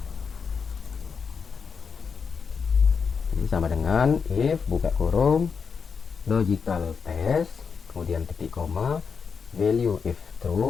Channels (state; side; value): quieter; right; 5.8 dB